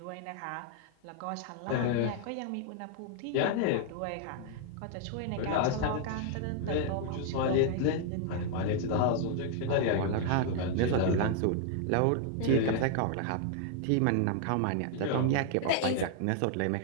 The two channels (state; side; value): different; both; correlation 0.00